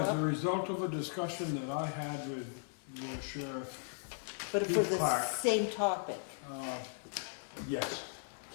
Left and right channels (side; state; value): right; silent; 53 dB below the other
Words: a up, result of a discussion that I had with the sheriff, but for the Clark. same topic. yes.